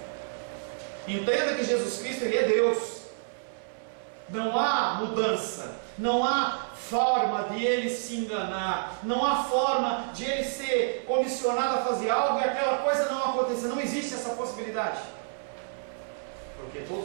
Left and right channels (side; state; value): left; silent; 59 dB below the other